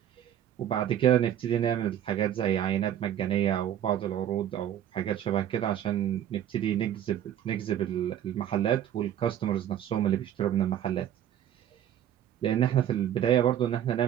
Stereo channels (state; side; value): quieter; left; 10.6 dB